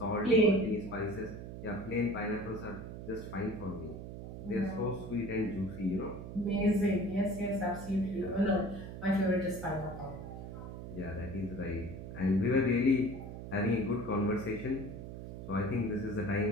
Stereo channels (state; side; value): noise; right; hum, 9 dB below the sound